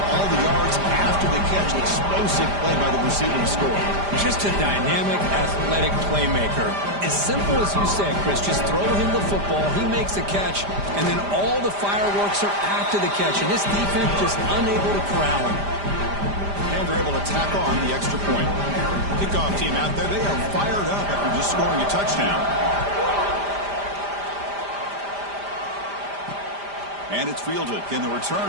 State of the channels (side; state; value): left; late; 5.0 ms